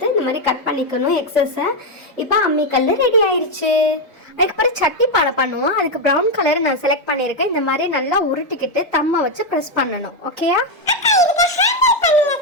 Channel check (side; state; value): both; normal; correlation 0.04